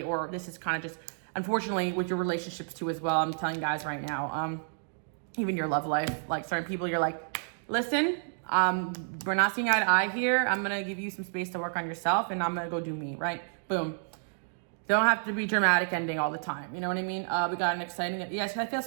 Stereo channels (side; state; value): left; silent; digital silence